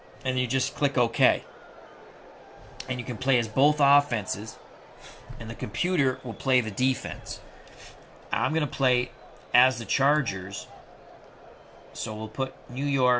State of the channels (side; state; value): both; identical; correlation 1.00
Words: And you just click OK. And you can play as both offenses, and the computer will play the defense. I'm going to play as the Chargers, so we'll put New